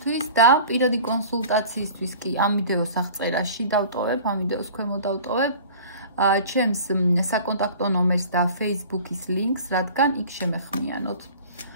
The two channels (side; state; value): both; inverted; correlation -0.43